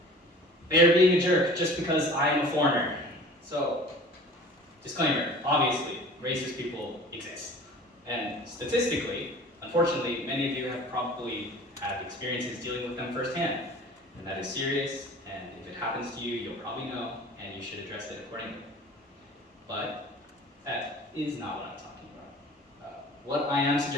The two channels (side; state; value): both; normal; correlation 0.43